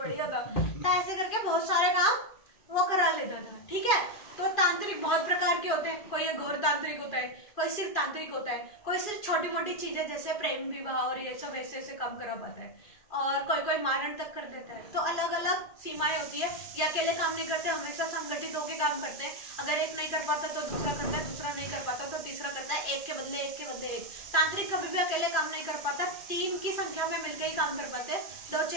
था। तो ऐसे करके बहुत सारे काम वो करा लेता था, ठीक है। तो तांत्रिक बहुत प्रकार के होते हैं, कोई घोर तांत्रिक होता है, कोई सिर्फ तांत्रिक होता है, कोई सिर्फ छोटी मोटी चीजें जैसे प्रेम विवाह और ये सब ऐसे ऐसे काम करा पाता है, और कोई मारण तक कर देता है। तो अलग अलग सीमाएं होती है। ये अकेले काम नहीं करते, हमेशा संगठित होकर काम करते हैं। अगर एक नहीं कर पाता तो दूसरा करता है, दूसरा नहीं कर पाता तो तीसरा एक के बदले एक के बदले एक। तांत्रिक कभी भी अकेले काम नहीं कर पाता, 3 की संख्या में मिलकर ही काम कर पाते, 2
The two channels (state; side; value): late; right; 2.4 ms